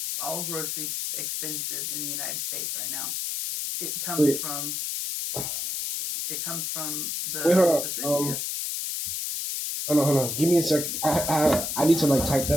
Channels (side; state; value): left; noise; hiss, 3 dB below the sound